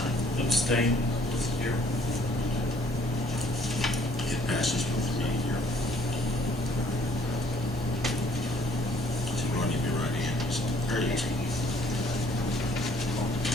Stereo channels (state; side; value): normal; both; correlation 0.61